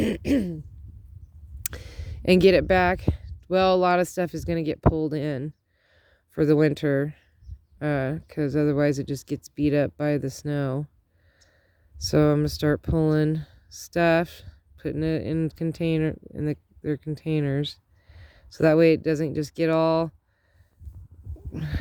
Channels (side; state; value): both; identical; correlation 1.00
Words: And get it back. Well, a lot of stuff is going to get pulled in for the winter. Because otherwise it just gets beat up by the snow. So I'm going to start pulling stuff. Putting it in their containers. So that way it doesn't just get all,